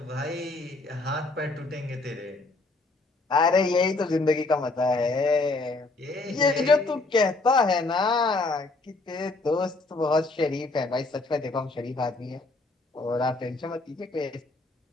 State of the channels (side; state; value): right; quieter; 3.3 dB